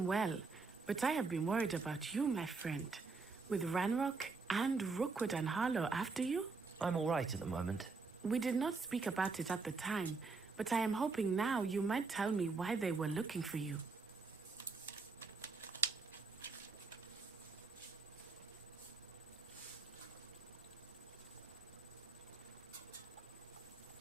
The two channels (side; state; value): left; quieter; 4.3 dB